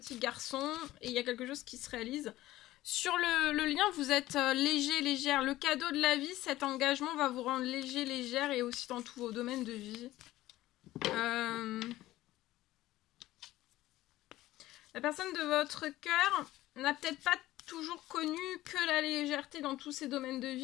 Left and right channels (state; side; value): quieter; right; 16.1 dB